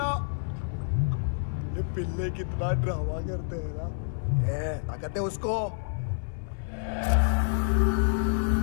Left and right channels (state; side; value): silent; right; 59 dB below the other